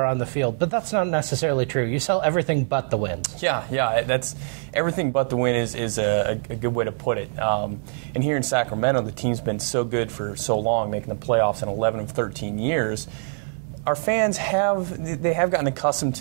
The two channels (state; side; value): silent; left; 63 dB below the other